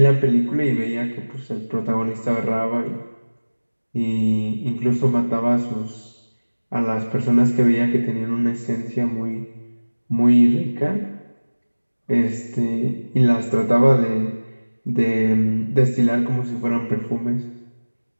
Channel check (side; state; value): both; inverted; correlation -1.00